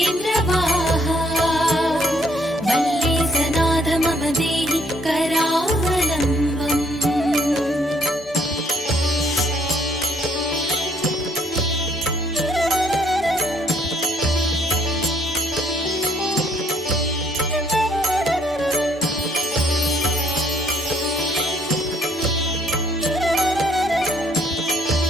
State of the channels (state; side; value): normal; both; correlation 0.67